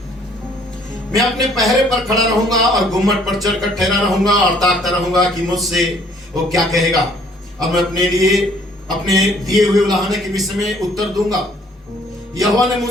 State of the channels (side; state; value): both; normal; correlation 0.61